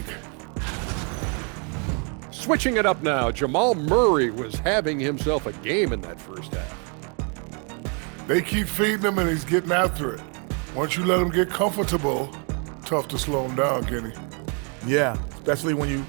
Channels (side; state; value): left; quieter; 37.3 dB